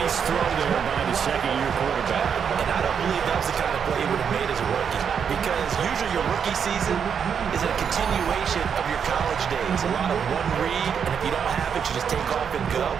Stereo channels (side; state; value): left; quieter; 7.2 dB